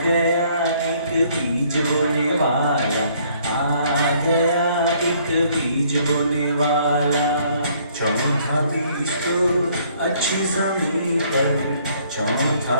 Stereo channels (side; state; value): both; inverted; correlation -0.63